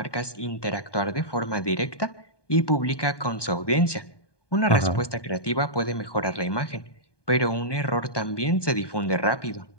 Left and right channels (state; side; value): late; right; 1.2 ms